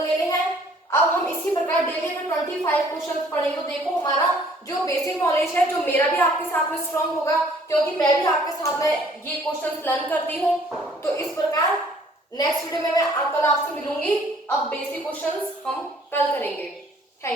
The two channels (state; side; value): normal; both; correlation 0.58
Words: लेने हैं। अब हम इसी प्रकार डेली अगर 25 क्वेश्चंस पढ़ेंगे तो देखो हमारा जो बेसिक नॉलेज है, जो मेरा भी आपके साथ में स्ट्रांग होगा, क्योंकि मैं भी आपके साथ में ये क्वेश्चंस लर्न करती हूँ। तो इस प्रकार नेक्स्ट वीडियो में मैं कल आपसे मिलूंगी। अब बेसिक क्वेश्चंस हम कल करेंगे।